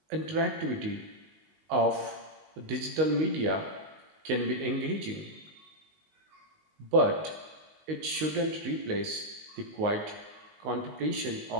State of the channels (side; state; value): left; late; 19 ms